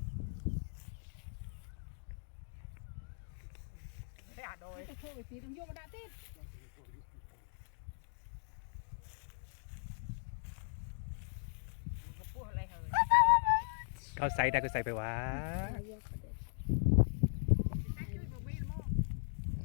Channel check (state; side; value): silent; right; digital silence